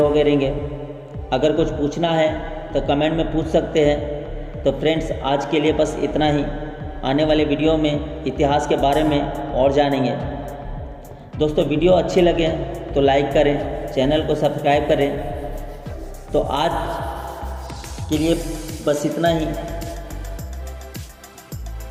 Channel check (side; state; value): both; identical; correlation 1.00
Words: हो गए रहेंगे। अगर कुछ पूछना है तो कमेंट में पूछ सकते हैं। तो फ्रेंड्स आज के लिए बस इतना ही। आने वाले वीडियो में इतिहास के बारे में और जानेंगे। दोस्तों वीडियो अच्छे लगे तो लाइक करें, चैनल को सब्सक्राइब करें। तो आज के लिए बस इतना ही।